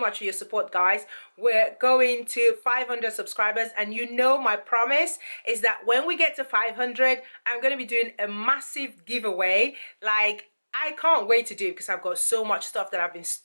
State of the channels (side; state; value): both; inverted; correlation -1.00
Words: for your support, guys. We're going to 500 subscribers, and you know my promise is that when we get to 500, I'm going to be doing a massive giveaway. Like, I can't wait to do it because I've got so much stuff that I've been